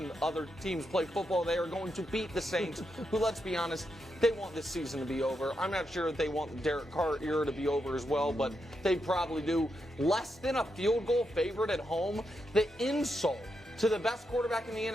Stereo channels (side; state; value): both; normal; correlation 0.84